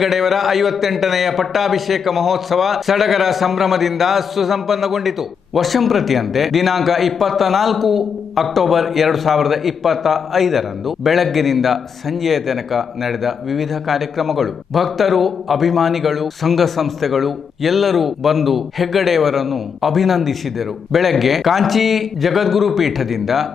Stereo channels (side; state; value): right; quieter; 6.6 dB